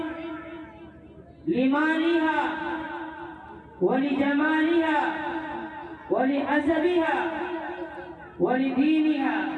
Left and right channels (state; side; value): identical; both; correlation 1.00